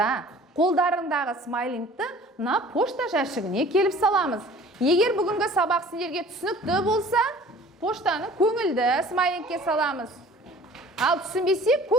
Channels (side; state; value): both; normal; correlation 0.48